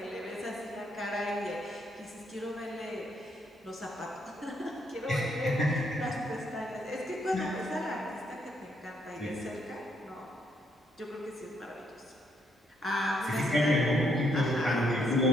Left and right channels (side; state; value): both; normal; correlation 0.73